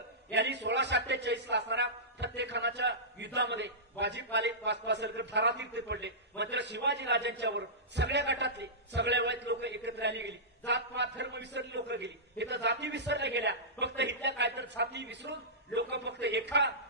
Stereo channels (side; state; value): both; normal; correlation -0.18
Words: यांनी 1648ला असणाऱ्या फत्तेखानाच्या युद्धामध्ये बाजी पासरकर धारातीर्थी पडले. मात्र शिवाजीराजांच्यावर सगळ्या गटातले सगळ्या वयात लोक एकत्र आली गेली. जातपात धर्म विसरली लोक गेली. इथं जाती विसरल्या गेल्या. फक्त इथल्या काय तर जाती विसरून लोक फक्त एका